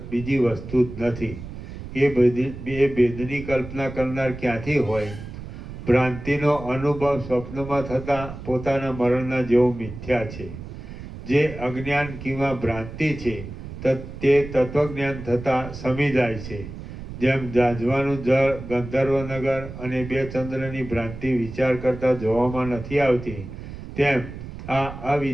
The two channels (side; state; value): right; noise; rumble, 11 dB below the sound